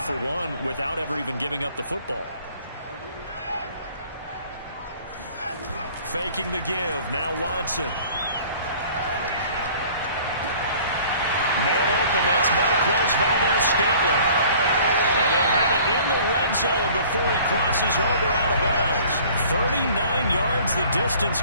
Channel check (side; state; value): both; inverted; correlation -0.51